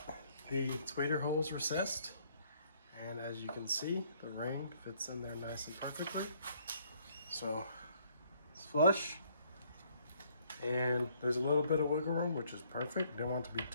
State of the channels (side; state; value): both; inverted; correlation -0.65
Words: the tweeter holes recessed, and as you can see, the ring fits in there nice and perfectly. So it's flush, and there's a little bit of wiggle room, which is perfect. Didn't want it to be